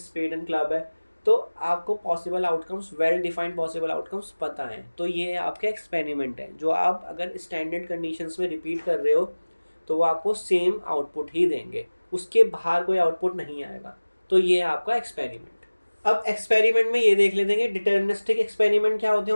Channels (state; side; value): inverted; both; correlation -1.00